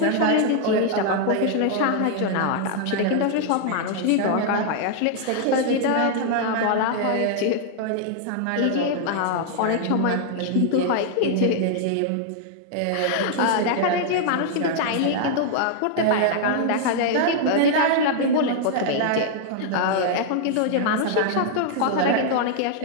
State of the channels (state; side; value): different; both; correlation 0.00